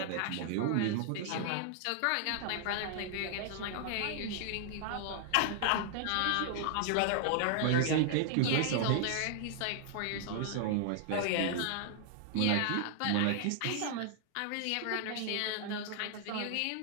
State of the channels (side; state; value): both; different; correlation 0.00